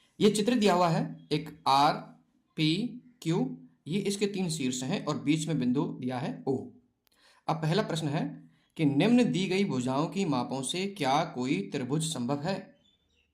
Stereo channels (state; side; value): identical; both; correlation 1.00